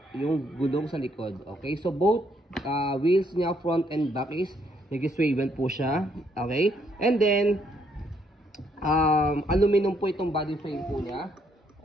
yung gulong sa likod. Okay? So both wheels niya, front and back is nag-swivel po siya. Okay? And then, aluminum po itong body frame po niya.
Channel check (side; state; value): both; normal; correlation 0.71